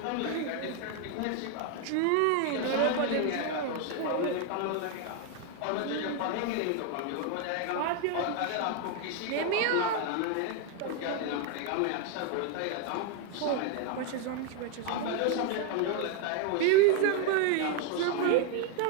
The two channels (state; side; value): different; both; correlation 0.00